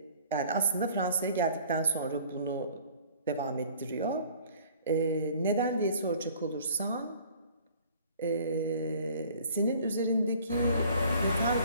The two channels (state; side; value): inverted; both; correlation -0.52